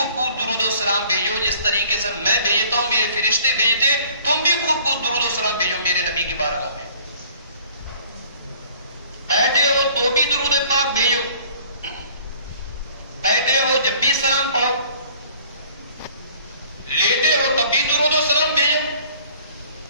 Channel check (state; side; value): inverted; both; correlation -0.54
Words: درود و سلام بھیجو، جس طریقے سے میں بھیجتا ہوں، میرے فرشتے بھیجتے، تم بھی خوب درود و سلام بھیجو میرے نبی کی بارگاہ میں۔ بیٹھے ہو تو بھی درود پاک بھیجو، بیٹھے ہو جب بھی سلام پڑھو، لیٹے ہو تب بھی درود و سلام بھیجو،